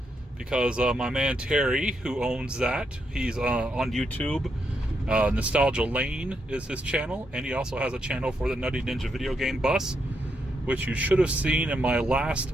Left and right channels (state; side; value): normal; both; correlation 0.80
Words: because my man Terry, who owns that, he's on YouTube. Nostalgia Lane is his channel, and he also has a channel for the Nutty Ninja video game bus, which you should have seen in my